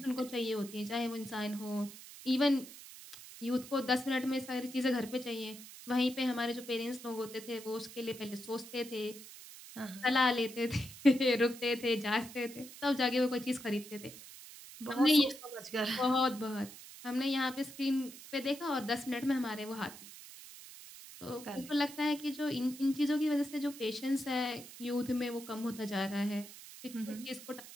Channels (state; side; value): noise; right; hiss, 15 dB below the sound